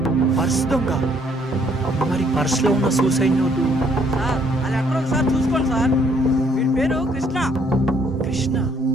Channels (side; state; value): both; normal; correlation 0.66